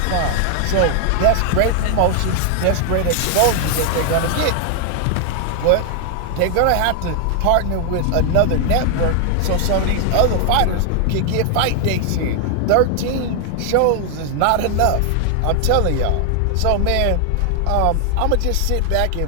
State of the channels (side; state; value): both; different; correlation 0.00